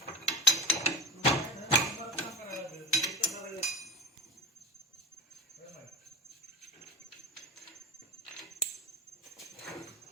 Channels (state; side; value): normal; both; correlation 0.28